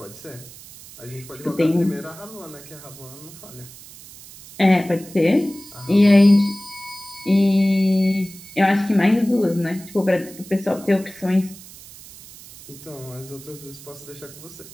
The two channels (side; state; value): right; noise; hiss, 18 dB below the sound